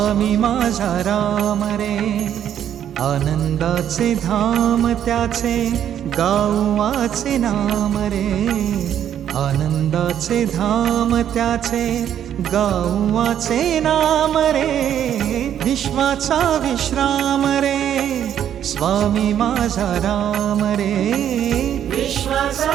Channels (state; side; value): quieter; left; 9.9 dB